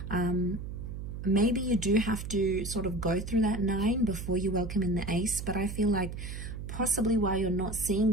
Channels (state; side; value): noise; right; hum, 7 dB below the sound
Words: Maybe you do have to sort of go through that 9 before you welcome in the Ace, but I feel like possibly why you're not seeing